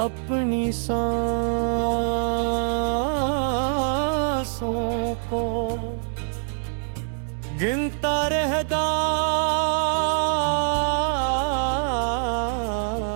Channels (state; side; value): silent; left; digital silence